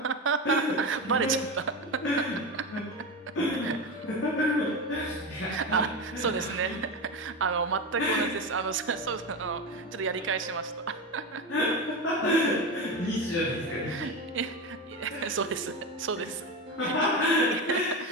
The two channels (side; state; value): both; normal; correlation 0.20